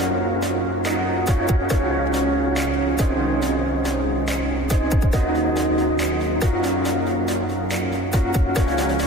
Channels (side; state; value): both; normal; correlation 0.49